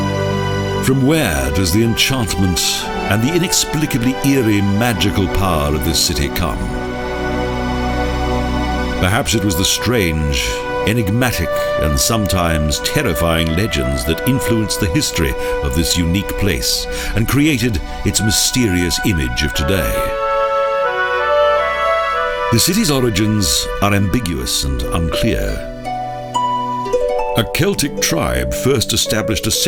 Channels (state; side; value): identical; both; correlation 1.00